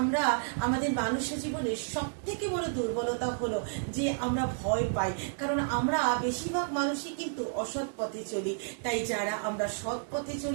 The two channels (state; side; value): silent; left; digital silence